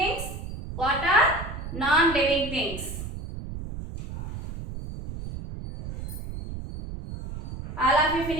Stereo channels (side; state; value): right; noise; rumble, 9 dB below the sound